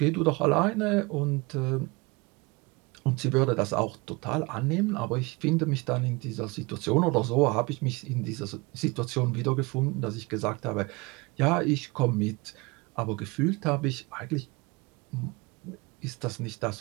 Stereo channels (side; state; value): left; quieter; 25.5 dB